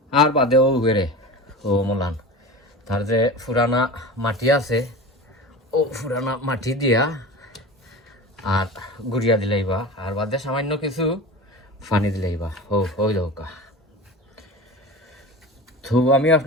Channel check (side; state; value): both; normal; correlation 0.32